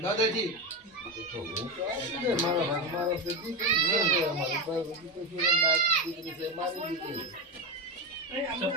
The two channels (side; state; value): both; normal; correlation 0.16